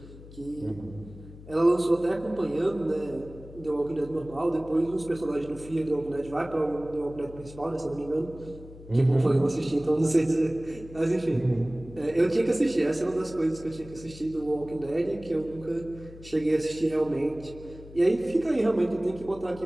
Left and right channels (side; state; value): left; noise; hum, 17 dB below the sound